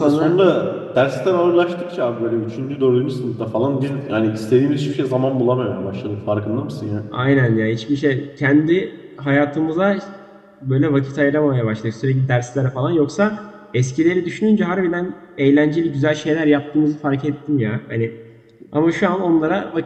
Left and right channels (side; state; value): both; identical; correlation 1.00